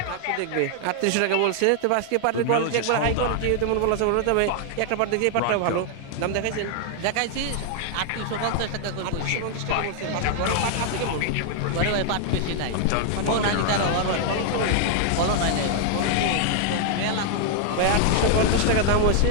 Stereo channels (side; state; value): both; different; correlation 0.00